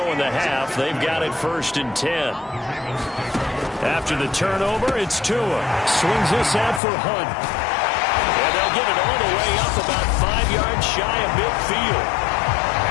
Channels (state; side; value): drops out; right; at 6.8 s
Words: in the half. They've got it 1st and 10. After the turnover, it's Tua. Swings this out for Hunt. And they'll get it all the way up about 5 yards shy of midfield.